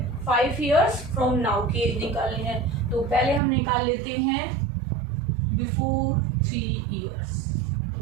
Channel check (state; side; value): drops out; left; at 3.4 s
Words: 5 इयर्स फ्रॉम नाउ की एज निकालनी है। तो पहले हम निकाल लेते हैं बिफोर 3 इयर्स,